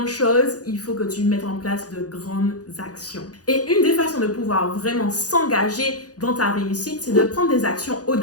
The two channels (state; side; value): late; right; 0.68 ms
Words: choses, il faut que tu mettes en place de grandes actions. Et une des façons de pouvoir vraiment s'engager dans ta réussite, c'est de prendre des actions